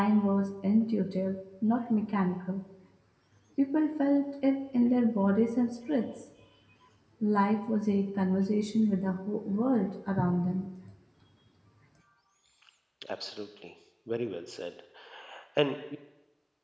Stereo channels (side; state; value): both; identical; correlation 1.00